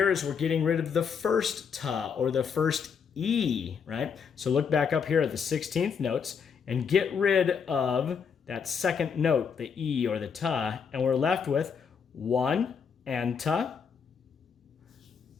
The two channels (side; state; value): right; quieter; 6.5 dB